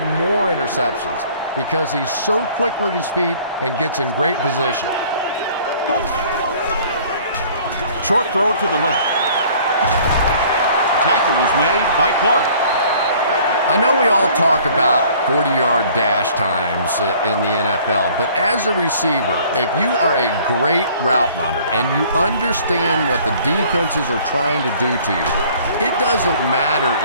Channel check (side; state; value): both; inverted; correlation -0.54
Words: more interceptions because he's so quick with his feet and gets in great position. Short throw to the left. Tackle was made by Clark. I know we all talk about 40-yard dash times in the NFL, but as a receiver, if you are a great route runner and you understand what the defenses are trying to do to you, it doesn't matter